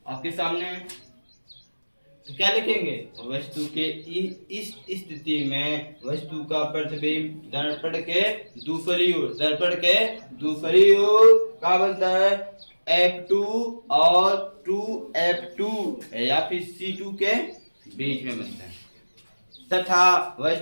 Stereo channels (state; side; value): inverted; both; correlation -1.00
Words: आपके सामने। तो क्या लिखेंगे, वस्तु के इस स्थिति में वस्तु का प्रतिबिंब दर्पण के दूसरी ओर, दर्पण के दूसरी ओर क्या बनता है, F2 और 2F2 या फिर C2 के बीच में बनता है। तथा